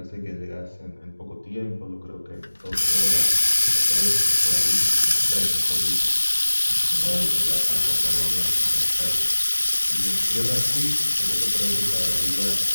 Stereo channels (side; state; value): both; inverted; correlation -1.00